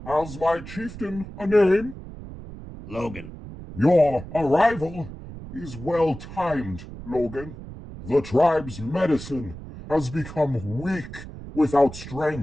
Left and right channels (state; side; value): noise; right; rumble, 13 dB below the sound